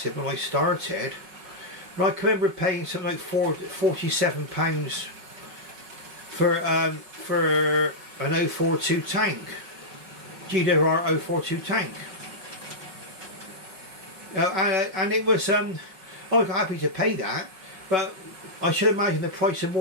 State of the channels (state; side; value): late; left; 5.5 ms